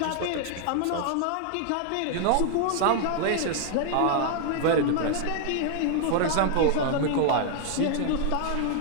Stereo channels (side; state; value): both; different; correlation -0.01